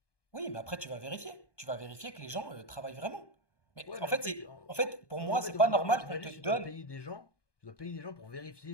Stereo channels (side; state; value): right; late; 1.2 ms